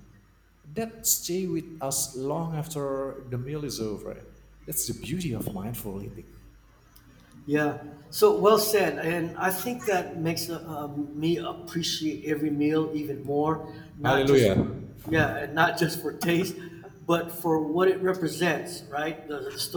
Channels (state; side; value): identical; both; correlation 1.00